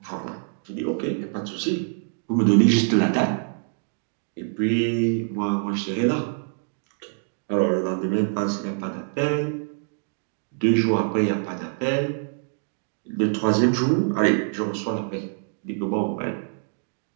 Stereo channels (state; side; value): silent; left; digital silence